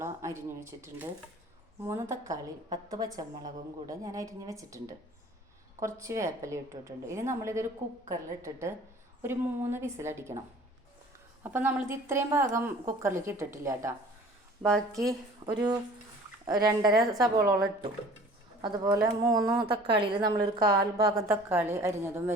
അരിഞ്ഞു വെച്ചിട്ടുണ്ട്, 3 തക്കാളി 10 പച്ചമുളകും കൂടെ ഞാൻ അരിഞ്ഞു വെച്ചിട്ടുണ്ട്, കുറച്ച് വേപ്പില ഇട്ടിട്ടുണ്ട്. ഇനി നമ്മളിതൊരു കുക്കറിലിട്ടിട്ട് ഒരു 3 വിസിലടിക്കണം. അപ്പം നമ്മളിത് ഇത്രയും ഭാഗം കുക്കറിലേക്ക് ഇട്ടിട്ടില്ല കേട്ടോ. ബാക്കി ഒരു 2.5 സബോളോളം ഇട്ടു. അതുപോലെ 3 തക്കാളിയിൽ നമ്മളൊരു 1/4 ഭാഗം തക്കാളി അരിഞ്ഞതും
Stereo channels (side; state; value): both; normal; correlation 0.48